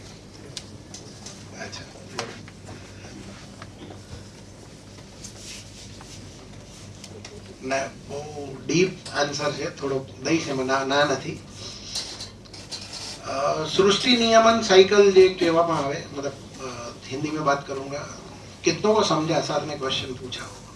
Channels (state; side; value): identical; both; correlation 1.00